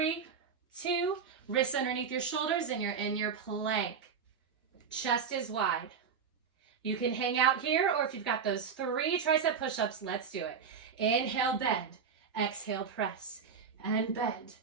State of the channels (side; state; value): left; quieter; 6.4 dB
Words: 2. Wrists underneath your shoulders and you're in your plank. Chest is wide. You can hang out here, or if you've got those 3 tricep push-ups, let's do it. Inhale, bend. Exhale, press. And bend.